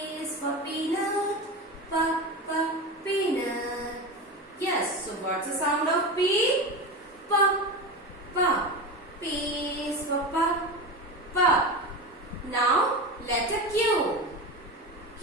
is for peanut. P, P, peanut. Yes, so what's the sound of P? P, P. P is for P, P. Now, letter Q. Q,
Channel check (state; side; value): normal; both; correlation 0.24